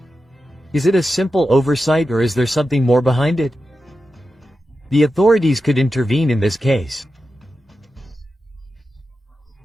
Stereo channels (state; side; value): normal; both; correlation 0.91